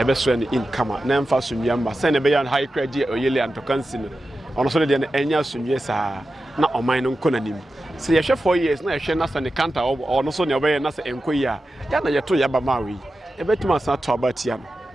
so ne in kama na mfa so nwiamba se ne be ya high credit oyele antokansi no ono so de ne enya so nwie saa na oman no nkonanim se ye hwe 4 years na ye hwe na sa ne kanta ono so ne obeye na sa enkoyi a ya na ye to ya ba mawi ebetuma sa to abatia no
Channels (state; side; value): normal; both; correlation 0.92